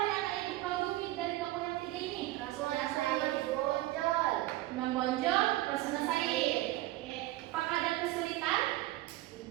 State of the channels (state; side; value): quieter; left; 17.0 dB